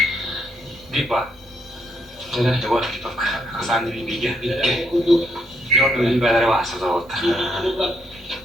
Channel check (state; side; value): normal; both; correlation 0.74